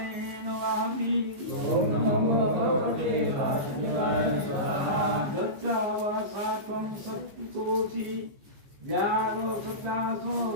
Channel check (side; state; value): left; late; 15 ms